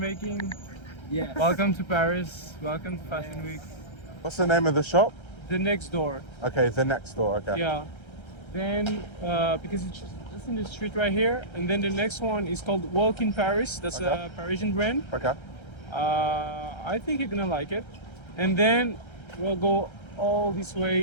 Yeah. Welcome to Paris. Welcome to Fashion Week. What's the name of the shop? The Next Door. Okay, the Next Door. Okay. Yeah. Then because it's just in the street right here, and then the next one is called Walk in Paris. That's a Parisian brand. Okay. I think you're gonna like it. And then we'll go all this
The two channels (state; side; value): late; right; 1.3 ms